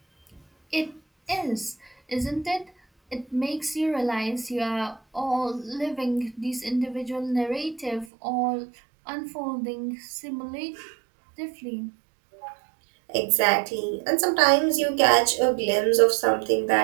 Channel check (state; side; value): drops out; left; at 8.1 s